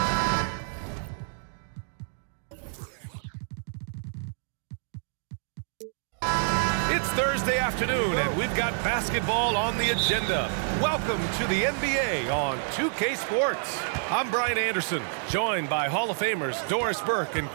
It's Thursday afternoon, and we've got basketball on the agenda. Welcome to the NBA on 2K Sports. I'm Brian Anderson, joined by Hall of Famers Doris Burke and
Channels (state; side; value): silent; left; digital silence